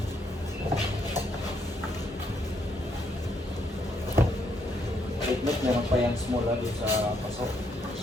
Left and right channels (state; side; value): normal; both; correlation 0.73